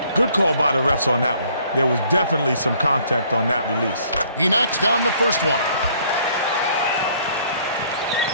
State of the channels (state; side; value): inverted; both; correlation -0.61